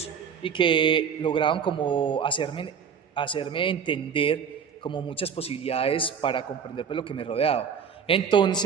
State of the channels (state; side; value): quieter; left; 7.0 dB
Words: y que lograban como hacerme entender como muchas posibilidades para comprender pues, lo que me rodeaba.